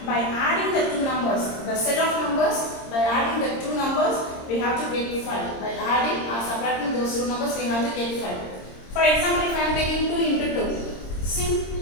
by adding the two numbers. The set of numbers, by adding the two numbers, we have to get 5. By adding or subtracting those two numbers, we have to get 5. For example, if I am taking 2 into 2, see,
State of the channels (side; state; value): right; late; 26 ms